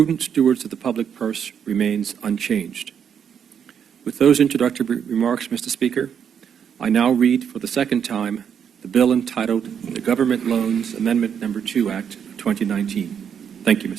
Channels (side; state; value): left; quieter; 7.9 dB